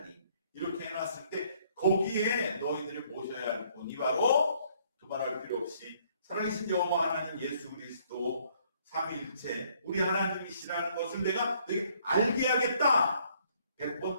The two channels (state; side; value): inverted; both; correlation -0.65